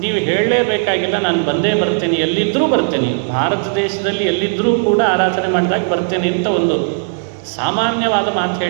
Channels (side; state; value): left; silent; 62 dB below the other